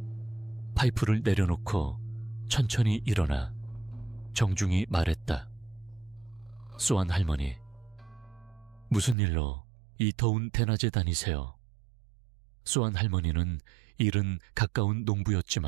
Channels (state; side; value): drops out; left; at 9.2 s